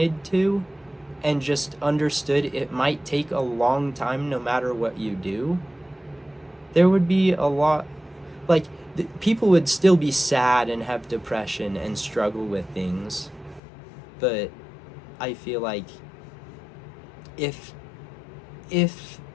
to and just understood it might take a long time no matter what you do, there would be a lot, like, people would still be sad and have depression and struggle with things. But I feel like if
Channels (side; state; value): right; drops out; at 13.6 s